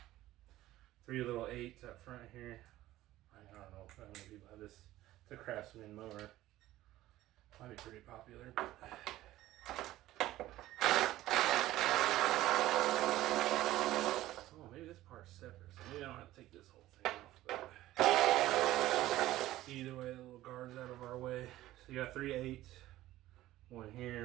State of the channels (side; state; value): left; quieter; 15.4 dB